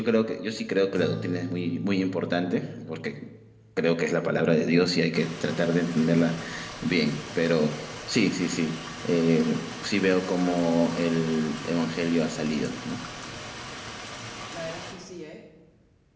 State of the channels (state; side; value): identical; both; correlation 1.00